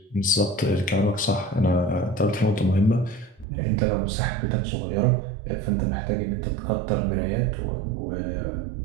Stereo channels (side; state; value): left; drops out; at 3.5 s